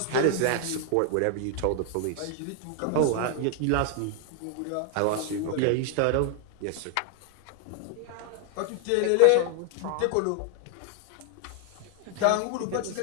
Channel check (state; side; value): different; both; correlation 0.00